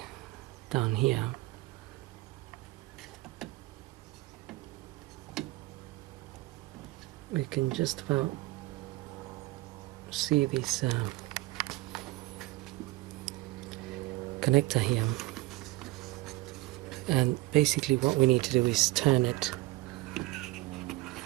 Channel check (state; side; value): quieter; left; 20.0 dB